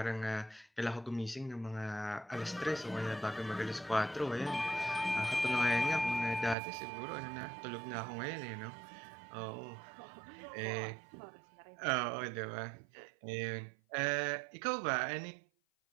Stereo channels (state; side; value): drops out; left; at 6.6 s